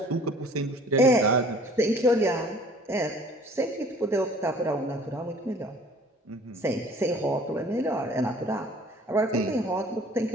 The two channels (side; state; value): both; normal; correlation 0.51